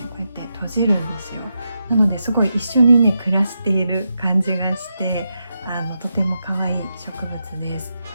こうやって閉じるんですよ。なのですごい一緒にね暮らしている感じがして、とても可愛い植物です。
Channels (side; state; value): both; inverted; correlation -0.86